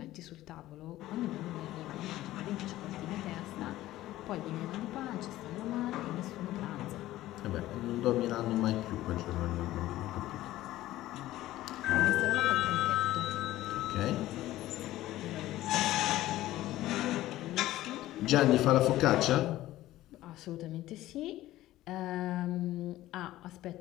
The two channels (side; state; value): right; quieter; 15.4 dB